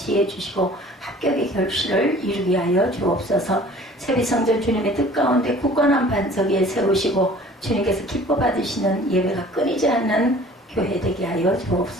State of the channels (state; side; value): normal; both; correlation 0.49